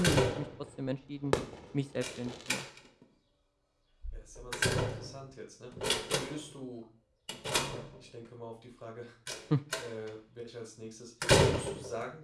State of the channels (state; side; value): identical; both; correlation 1.00